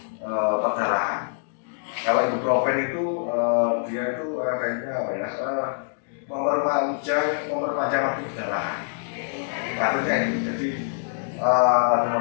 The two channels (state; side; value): silent; right; digital silence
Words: perdarahan. Kalau ibuprofen itu dia itu efeknya apa ya memperpanjang waktu perdarahan. Kasusnya ini jadi